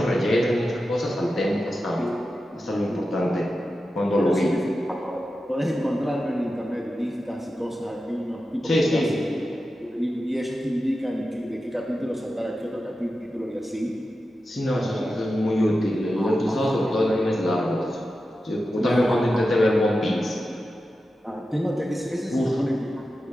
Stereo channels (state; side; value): normal; both; correlation 0.91